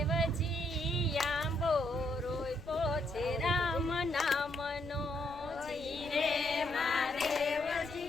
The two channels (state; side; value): noise; left; rumble, 18 dB below the sound